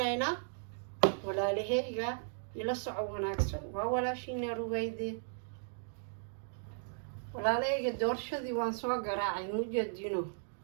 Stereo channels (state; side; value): silent; left; digital silence